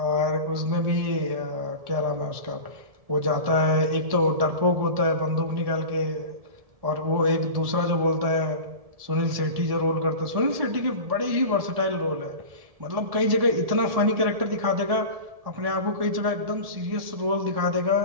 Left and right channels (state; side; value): late; left; 1.7 ms